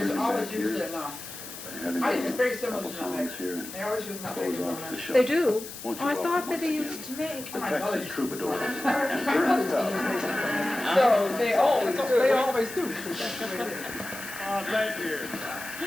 is always used in, having I think it's very a similar couple to nutmeg. songs here and They always use nutmeg close in off the nutmeg. show. They do. Won't you Oh, I welcome thought that once they again used to make. the Texas Troubadours and My Ernest mother Tubb. used to use Mace. So they always do. They always do. Oh, thank you.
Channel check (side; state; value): left; noise; hiss, 12 dB below the sound